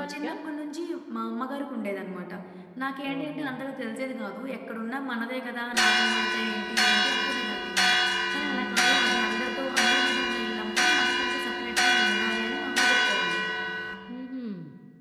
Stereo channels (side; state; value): both; identical; correlation 1.00